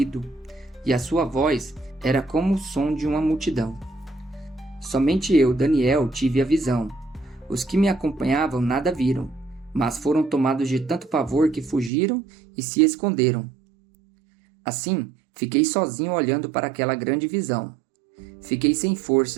e a sua voz era como o som de uma multidão. Somente eu, Daniel, tive a visão. Os que me acompanhavam nada viram, mas foram tomados de tanto pavor que fugiram e se esconderam. Assim, fiquei sozinho olhando para aquela grande visão. Fiquei sem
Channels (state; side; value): drops out; left; at 11.9 s